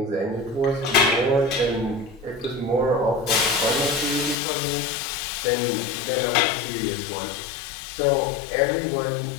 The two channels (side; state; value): right; drops out; at 4.4 s